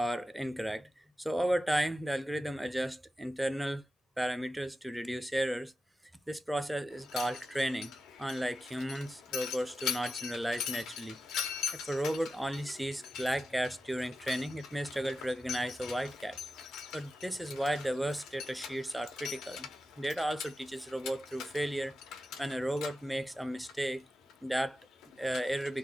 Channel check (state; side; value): normal; both; correlation 0.91